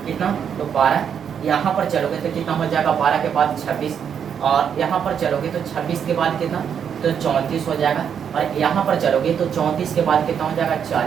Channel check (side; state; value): left; quieter; 7.9 dB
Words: कितना, तो 12। यहाँ पर चलोगे तो कितना हो जाएगा, 12 के बाद 26, और यहाँ पर चलोगे तो 26 के बाद कितना, तो 34 हो जाएगा। और यहाँ पर चलोगे तो 34 के बाद कितना हो जाएगा,